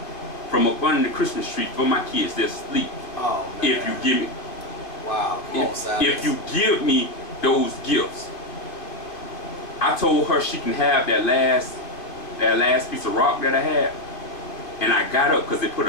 from up under the Christmas tree for my kids that sleep. Oh, man. If you give me, wow, if you give me those gifts. I told her she can have that last piece of rock that I had. And I got up because it put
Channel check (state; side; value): late; right; 2.5 ms